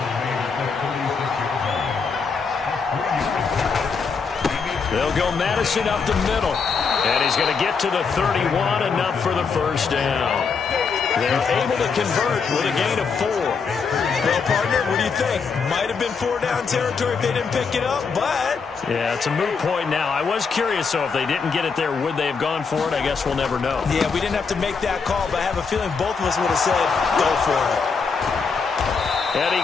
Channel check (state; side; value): quieter; right; 5.3 dB